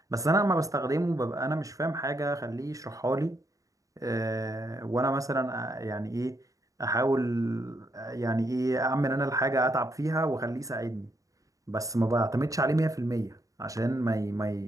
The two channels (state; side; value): late; left; 0.16 ms